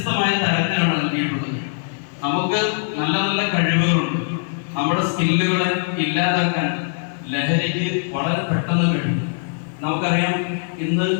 തരത്തിലാണ് നൽകിയിട്ടുള്ളത്. നമുക്ക് നല്ല നല്ല കഴിവുകളുണ്ട്. നമ്മുടെ സ്കില്ലുകളെ ഇല്ലാതാക്കാൻ ലഹരിക്ക് വളരെ പെട്ടെന്ന് കഴിയും. നമുക്കറിയാം, ഇന്ന്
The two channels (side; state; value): right; silent; 58 dB below the other